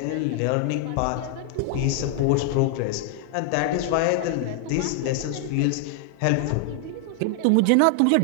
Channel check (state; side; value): different; both; correlation 0.00